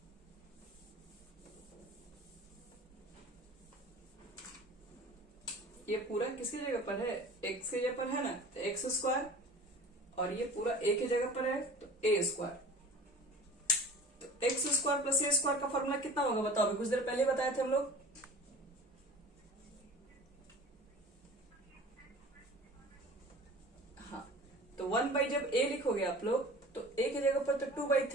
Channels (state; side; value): normal; both; correlation 0.42